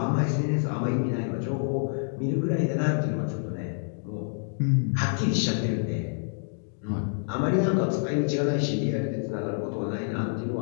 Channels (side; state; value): right; silent; digital silence